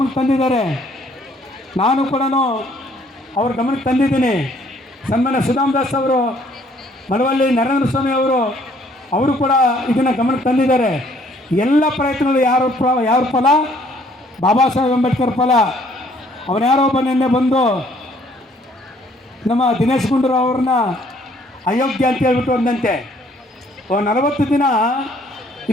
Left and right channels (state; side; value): normal; both; correlation 0.62